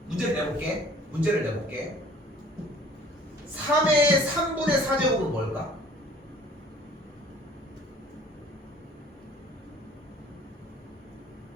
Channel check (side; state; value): both; normal; correlation 0.52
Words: 문제를 내볼게. 3의 3분의 4제곱은 뭘까?